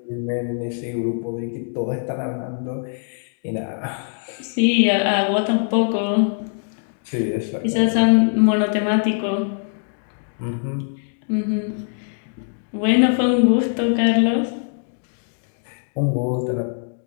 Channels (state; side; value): silent; right; digital silence